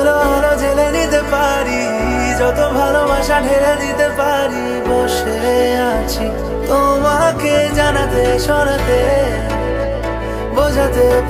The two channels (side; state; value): both; identical; correlation 1.00